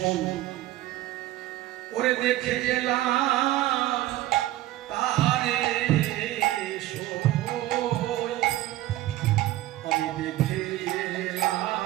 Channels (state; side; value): quieter; left; 15.5 dB